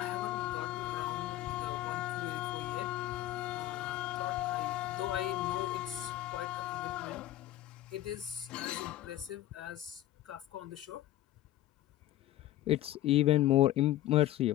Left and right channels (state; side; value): quieter; right; 14.2 dB